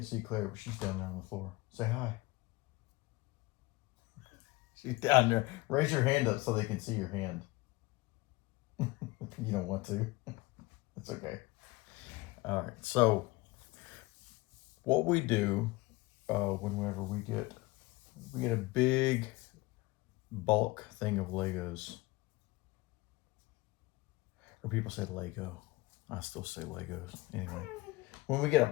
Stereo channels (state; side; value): quieter; right; 21.4 dB